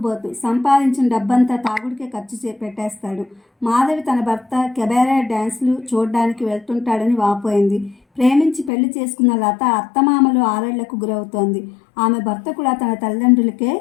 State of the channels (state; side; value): drops out; right; at 8.7 s